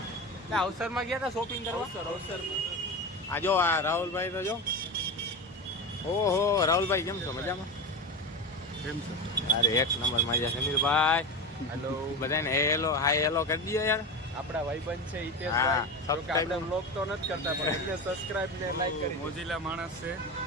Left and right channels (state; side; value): normal; both; correlation 0.22